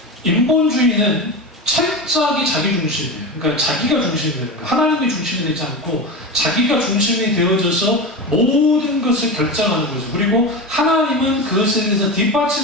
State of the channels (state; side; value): normal; both; correlation 0.23